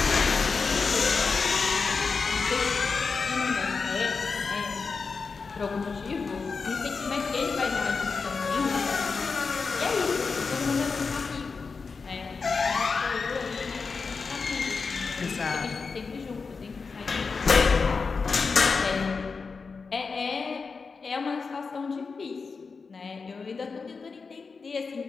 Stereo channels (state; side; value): quieter; right; 4.8 dB